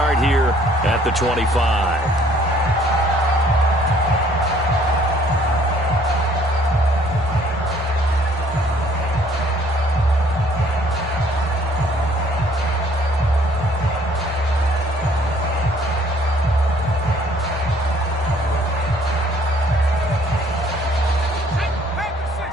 here at the 25.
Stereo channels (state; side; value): normal; both; correlation 0.60